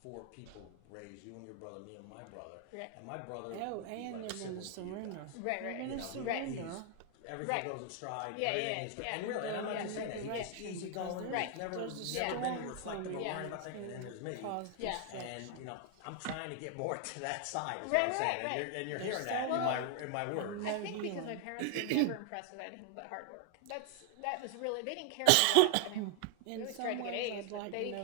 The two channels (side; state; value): both; different; correlation 0.00